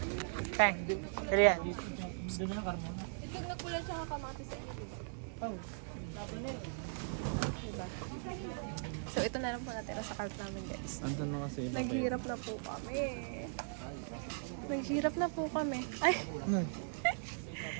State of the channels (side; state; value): left; silent; digital silence